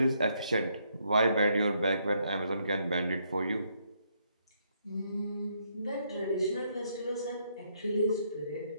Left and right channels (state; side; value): inverted; both; correlation -0.74